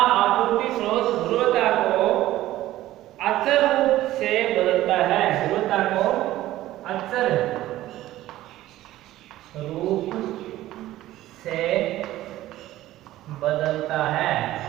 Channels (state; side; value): quieter; left; 15.1 dB